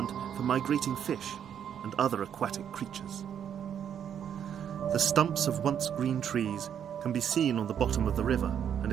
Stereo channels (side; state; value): left; quieter; 8.8 dB